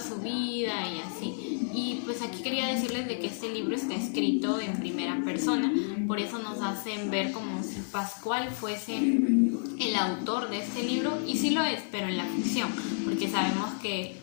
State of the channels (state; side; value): silent; right; digital silence